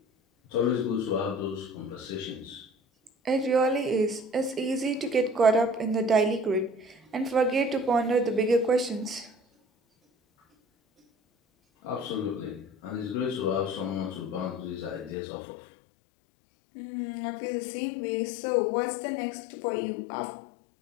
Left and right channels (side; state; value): right; drops out; at 15.2 s